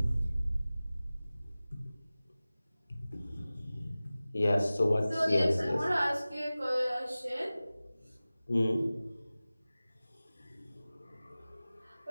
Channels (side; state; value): both; inverted; correlation -0.97